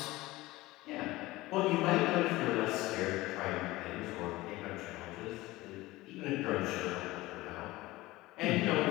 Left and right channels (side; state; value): right; quieter; 19.0 dB